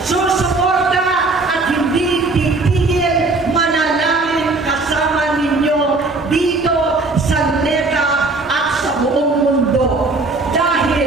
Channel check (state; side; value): quieter; left; 3.4 dB